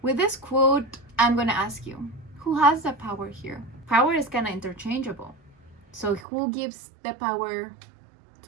With this quote, I'm gonna ask you, who has the power here? Power is kind of interchangeable. So who gives the power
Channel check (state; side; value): drops out; left; at 6.2 s